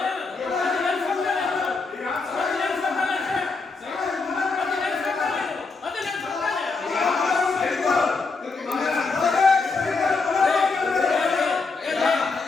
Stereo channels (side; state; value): right; quieter; 4.2 dB